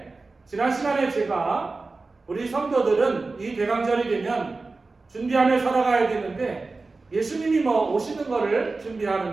지난 시간에 제가 우리 성도들은 이 대강절이 되면 준비하며 살아가야 되는데, 예수님이 뭐 오시는 거를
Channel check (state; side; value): quieter; left; 3.7 dB